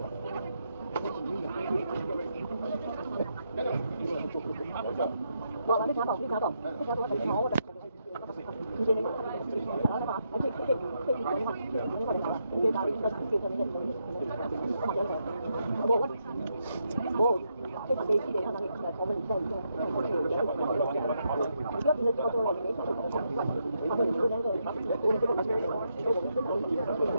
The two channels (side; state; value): both; inverted; correlation -0.80